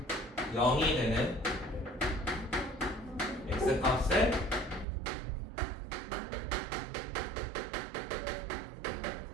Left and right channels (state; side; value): drops out; left; at 4.9 s